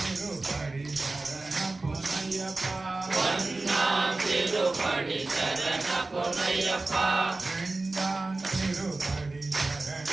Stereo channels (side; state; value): left; quieter; 3.3 dB